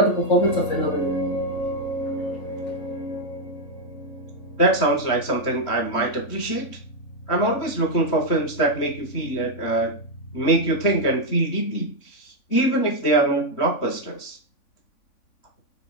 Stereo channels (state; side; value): late; right; 3.5 ms